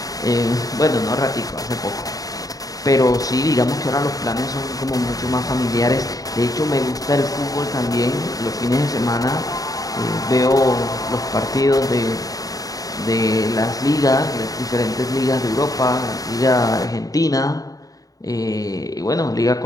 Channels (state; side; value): late; right; 0.18 ms